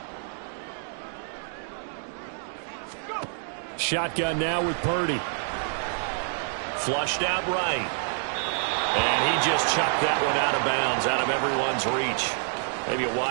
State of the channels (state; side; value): silent; left; digital silence